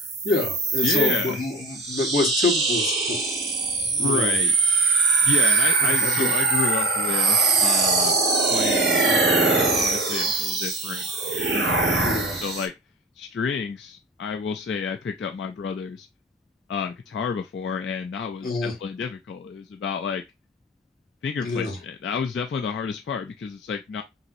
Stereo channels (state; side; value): normal; both; correlation 0.36